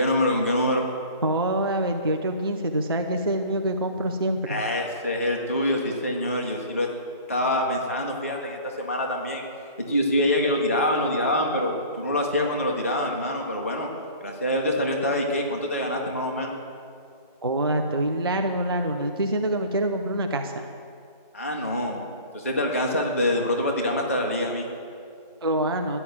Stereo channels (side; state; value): both; inverted; correlation -0.42